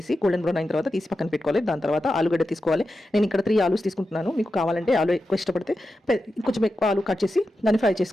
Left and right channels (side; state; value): both; normal; correlation 0.90